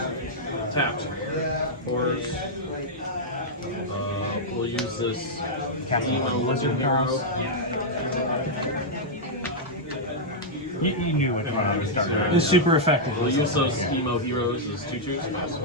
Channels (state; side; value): normal; both; correlation -0.06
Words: Tapped. Cores. We'll use this Emo Lizard Hero. You knew what I was starting. It's super effective. We'll use those Emo Heroes as 2/2s.